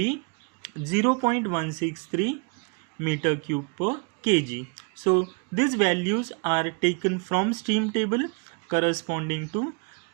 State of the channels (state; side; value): quieter; left; 35.3 dB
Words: 0.163 meter cube per kg. So these values are taken from steam table corresponding to